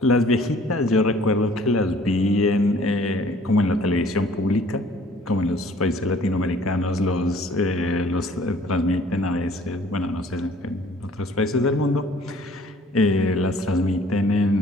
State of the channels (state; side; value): normal; both; correlation 0.55